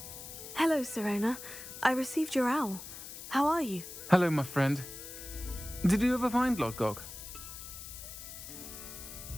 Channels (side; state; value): left; noise; hiss, 11 dB below the sound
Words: Hello, Serona. I received your owl. How are you? Hello, my friend. Did you ever find Lodgok?